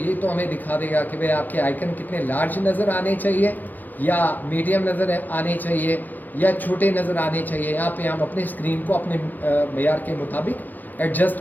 तो हमें दिखा देगा कि भाई आपके आइकन कितने लार्ज नज़र आने चाहिए या मीडियम नज़र आने चाहिए या छोटे नज़र आने चाहिए यहाँ पे हम अपने स्क्रीन को अपने मेयार के मुताबिक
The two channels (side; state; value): right; late; 0.085 ms